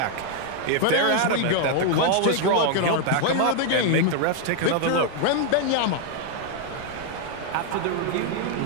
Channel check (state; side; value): different; both; correlation 0.00